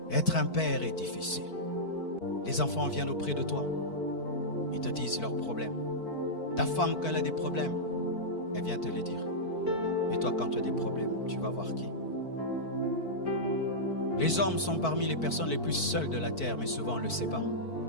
Être un père est difficile. Les enfants viennent auprès de toi. Ils te disent leurs problèmes. Ta femme, quand elle a des problèmes, elle vient te les dire. Et toi, quand tu as des problèmes, tu vas voir qui? Les hommes sont parmi les personnes les plus seules de la terre, mais souvent on ne le sait pas.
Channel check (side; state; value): right; late; 4.5 ms